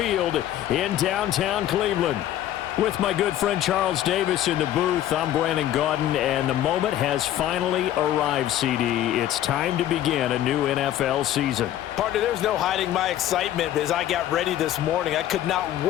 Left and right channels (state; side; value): quieter; right; 12.3 dB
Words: in downtown Cleveland. With my good friend Charles Davis in the booth, I'm Brandon Gaudin, and the moment has finally arrived, CD. It's time to begin a new NFL season. Partner, there's no hiding my excitement as I got ready this morning. I could not